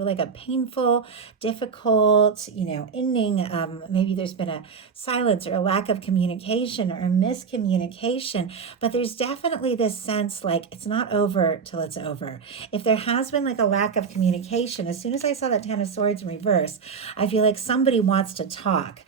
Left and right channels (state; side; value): quieter; left; 5.7 dB